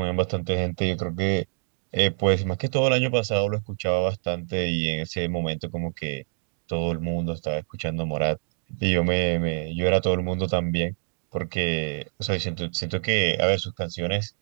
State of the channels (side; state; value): left; silent; digital silence